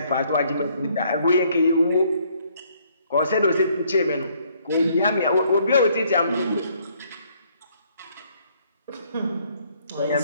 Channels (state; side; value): inverted; both; correlation -0.66